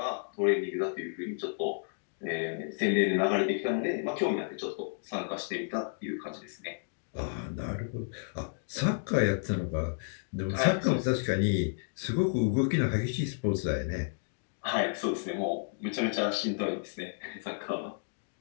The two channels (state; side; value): silent; right; digital silence